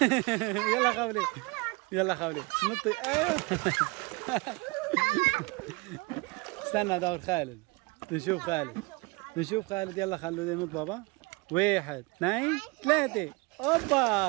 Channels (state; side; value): quieter; left; 26.9 dB